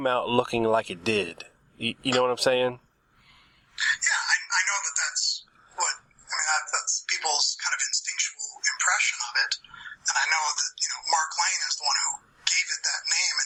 out looking like it did. You know what I'm saying? Yeah, I know that's that's people's kind of instinctual impression of it. And I know that, you know, Mark Lane is the one who gave it that name in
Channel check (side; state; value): both; identical; correlation 1.00